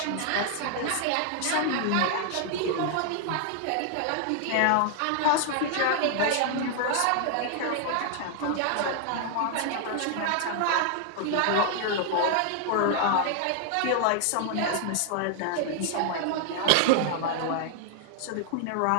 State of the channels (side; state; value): both; different; correlation 0.00